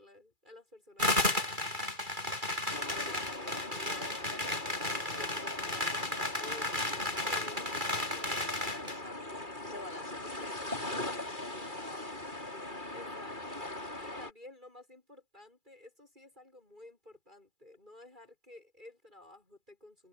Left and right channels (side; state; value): left; late; 2.3 ms